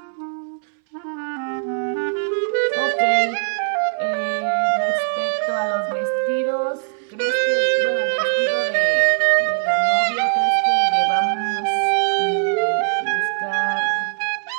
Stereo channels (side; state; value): left; silent; 65 dB below the other